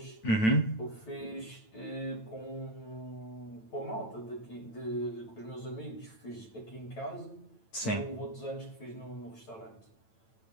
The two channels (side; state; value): right; late; 9.0 ms